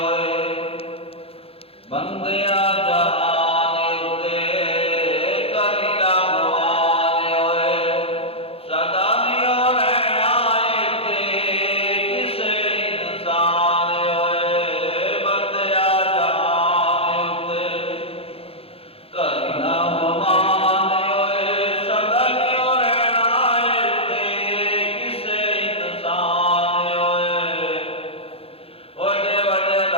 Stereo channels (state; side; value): late; right; 0.28 ms